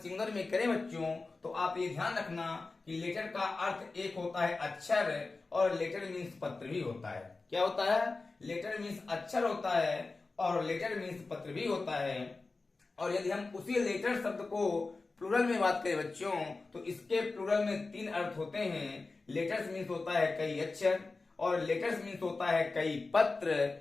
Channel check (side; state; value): right; quieter; 3.7 dB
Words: में करें बच्चों तो आप ये ध्यान रखना कि लेटर का अर्थ एक होता है अक्षर और लेटर मीन्स पत्र भी होता है। क्या होता है? लेटर मीन्स अक्षर होता है और लेटर मीन्स पत्र भी होता है। और यदि हम उसी लेटर शब्द को प्लूरल में बात करें बच्चों तो इसके प्लूरल में 3 अर्थ होते हैं। लेटर्स मीन्स होता है कई अक्षर और लेटर्स मीन्स होता है कई पत्र